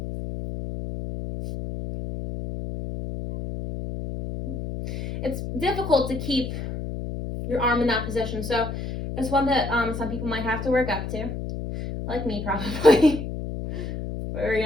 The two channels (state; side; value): noise; left; hum, 6 dB below the sound